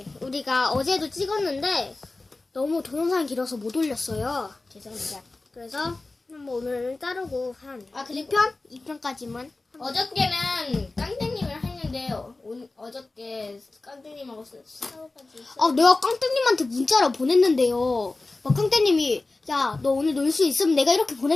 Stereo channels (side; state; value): right; quieter; 3.3 dB